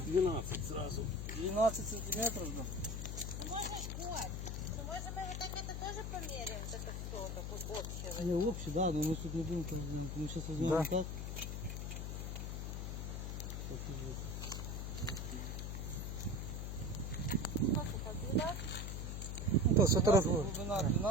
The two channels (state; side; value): noise; left; hum, 4 dB below the sound